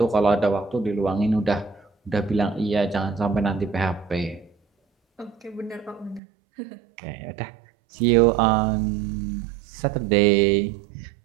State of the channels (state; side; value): drops out; left; at 6.2 s